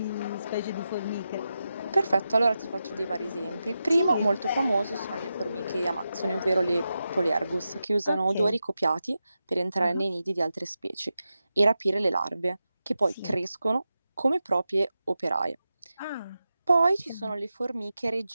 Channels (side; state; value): both; inverted; correlation -0.90